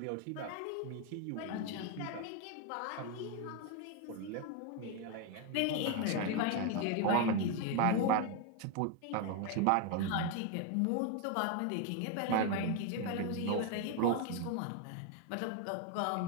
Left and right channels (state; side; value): different; both; correlation 0.01